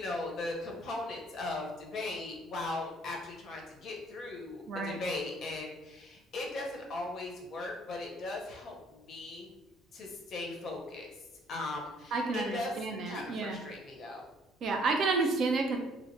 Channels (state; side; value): normal; both; correlation 0.61